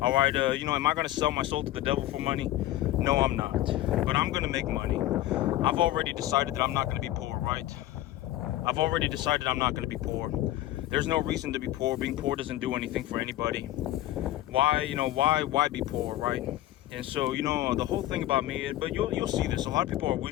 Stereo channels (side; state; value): right; quieter; 14.7 dB